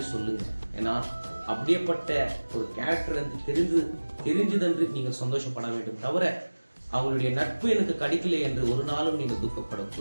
சொல்லுங்க. ஏன்னா அப்படியேப்பட்ட ஒரு கேரக்டர் தெரிஞ்சதென்று நீங்கள் சந்தோஷப்பட வேண்டும். தவிர அவங்களுடைய நட்பு எனக்கு கிடைக்கல என்று ஒரு நாளும் நீங்கள்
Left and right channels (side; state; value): both; inverted; correlation -1.00